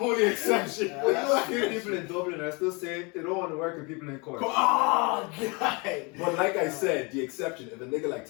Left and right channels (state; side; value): quieter; right; 29.4 dB